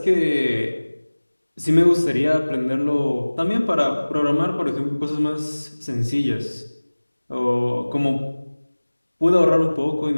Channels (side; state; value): both; inverted; correlation -1.00